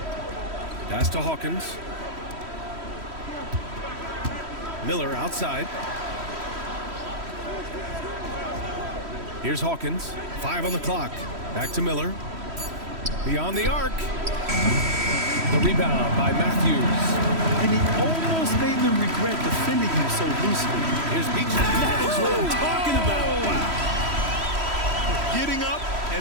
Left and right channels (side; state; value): left; late; 3.1 ms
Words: Pass to Hawkins. Miller outside. Here's Hawkins. 5 on the clock. Back to Miller. Beyond the arc. The rebound by Matthews. And he almost made them regret defending him so loosely. Here's Beach. That is what I'm talking about. Wow. Getting up